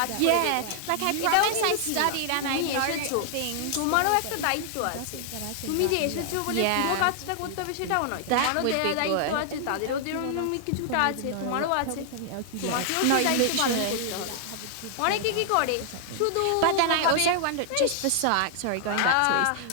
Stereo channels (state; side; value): different; both; correlation 0.00